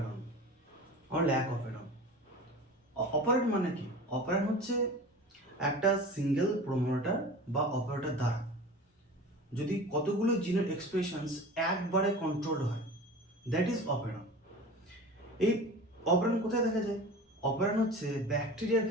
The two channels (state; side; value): normal; both; correlation 0.36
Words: অর ল্যাক অপারেটন। অপারেটন মানে কি? অপারেটন হচ্ছে একটা সিঙ্গেল প্রোমোটার বা অপারেটর দ্বারা যদি কতগুলো জিনের এক্সপ্রেশনস একবারে কন্ট্রোল হয়, দ্যাট ইজ অপারেটন। এই অপারেটন কোথায় দেখা যায়? অপারেটন হচ্ছে ব্যাকটেরিয়ার